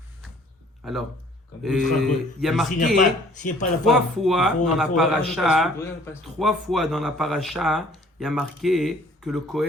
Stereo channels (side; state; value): both; normal; correlation 0.56